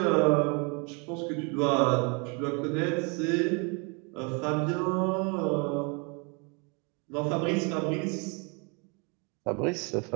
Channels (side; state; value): left; quieter; 32.8 dB